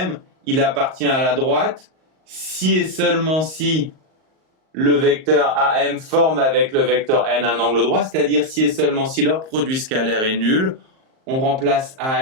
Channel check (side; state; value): left; late; 38 ms